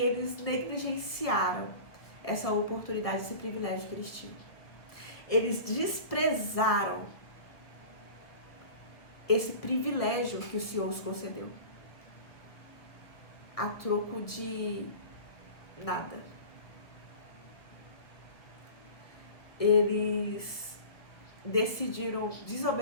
eles negligenciaram essa oportunidade, esse privilégio que eles tinham. Eles desprezaram esse privilégio que o Senhor os concedeu, a troco de nada. Eles decidiram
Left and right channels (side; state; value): right; late; 1.3 ms